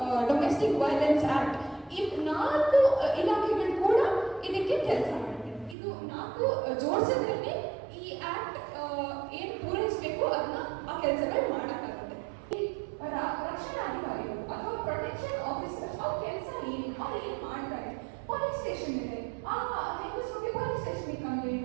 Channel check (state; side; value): drops out; left; at 5.8 s